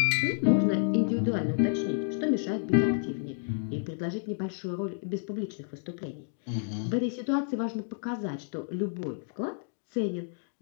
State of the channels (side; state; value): right; silent; digital silence